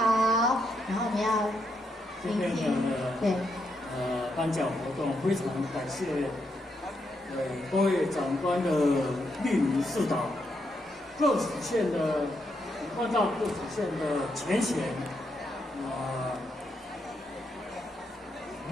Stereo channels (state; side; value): normal; both; correlation 0.80